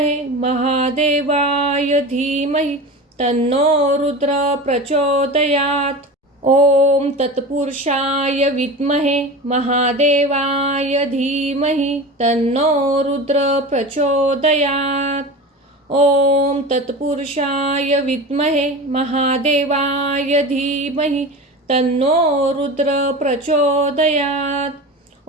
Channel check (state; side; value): normal; both; correlation 0.30